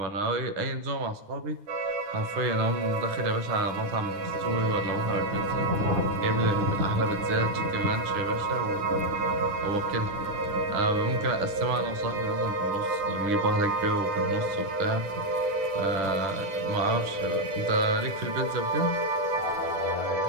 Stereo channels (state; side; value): late; left; 9.8 ms